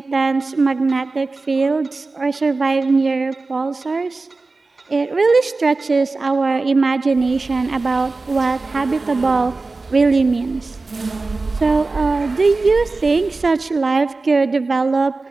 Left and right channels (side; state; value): left; quieter; 3.6 dB